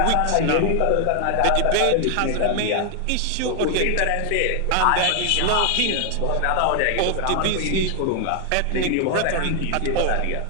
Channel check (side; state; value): both; different; correlation 0.00